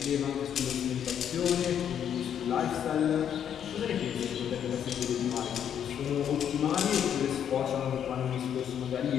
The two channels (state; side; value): quieter; right; 9.1 dB